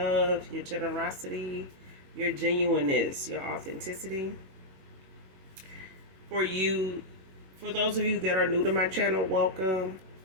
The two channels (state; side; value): late; left; 21 ms